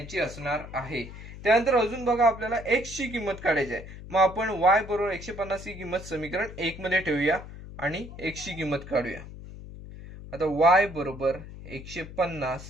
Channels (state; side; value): noise; left; hum, 13 dB below the sound